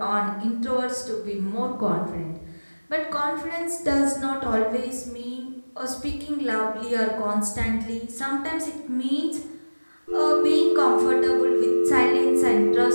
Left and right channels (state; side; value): inverted; both; correlation -1.00